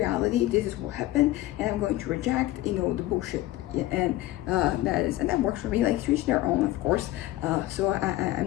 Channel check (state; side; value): quieter; right; 16.3 dB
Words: this is what happened, and I'm going to reject, you know, the bullshit. And that works for me. Like, to each their own, of course. So I'm